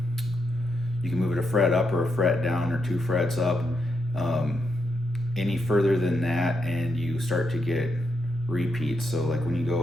can move it a fret up or a fret down or 2 frets up. Any further than that, and you start to get repeats. So like when you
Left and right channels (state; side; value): noise; right; rumble, 22 dB below the sound